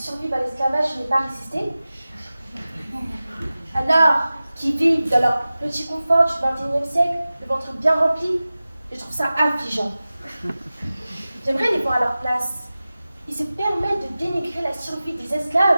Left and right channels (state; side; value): inverted; both; correlation -0.96